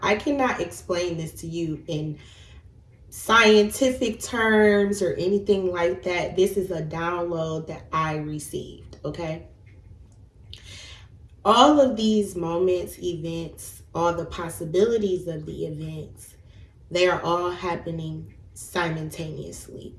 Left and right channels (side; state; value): both; identical; correlation 1.00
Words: I cannot explain this to you in scientific terms or anything like that. This is a download that I received, okay? All of these moments, events, all the possibilities of the events, they are all happening simultaneously